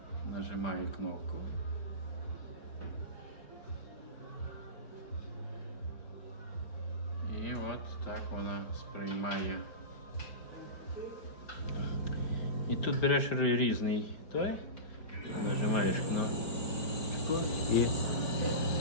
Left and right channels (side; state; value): right; late; 4.5 ms